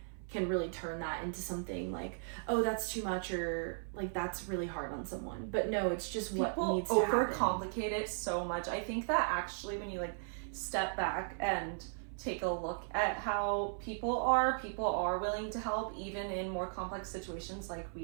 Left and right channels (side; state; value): left; silent; 53 dB below the other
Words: can really turn that into something like, oh, that's too much or like that's really hard on someone. But no, it's just what People needs to happen. overcomplicate it so much. I think that actually when you like step back and take a look at how people are willing to help even in more complex situations like